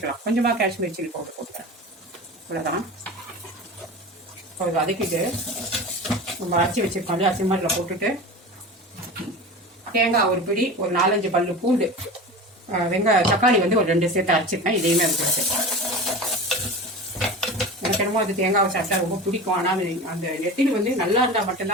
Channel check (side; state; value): both; normal; correlation 0.32